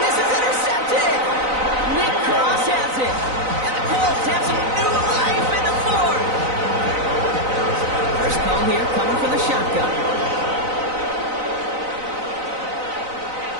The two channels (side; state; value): left; late; 3.9 ms